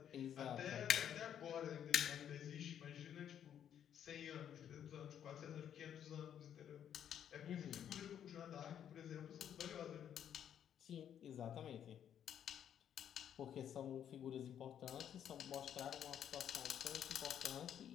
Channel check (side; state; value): right; quieter; 9.5 dB